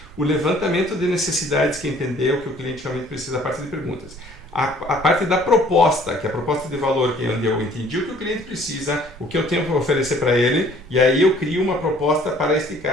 o levantamento de necessidades, que é entender o que o cliente realmente precisa, a parte de perguntas, a parte da proposta, que é a proposta de valor, que é onde eu entendi o que o cliente precisa, o que eu tenho para oferecer para ele, e aí eu crio uma proposta para este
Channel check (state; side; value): normal; both; correlation 0.56